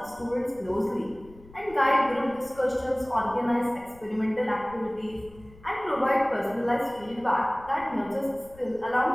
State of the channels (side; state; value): left; noise; rumble, 23 dB below the sound